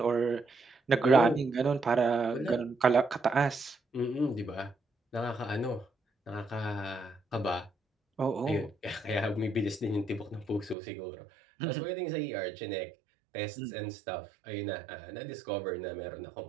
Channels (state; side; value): drops out; left; at 10.8 s